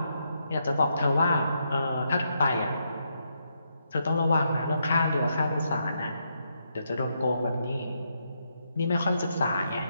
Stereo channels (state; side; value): inverted; both; correlation -0.79